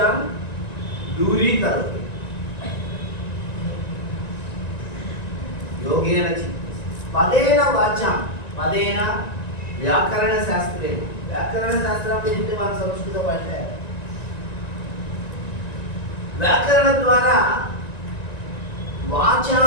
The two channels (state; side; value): late; right; 1.9 ms